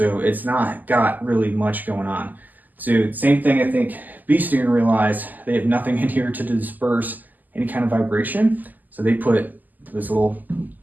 it's not got really much going on. So same thing, I think Bee Stinger realized they have nothing in here to disperse any kind of vibration, so they put this little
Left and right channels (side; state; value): left; late; 0.084 ms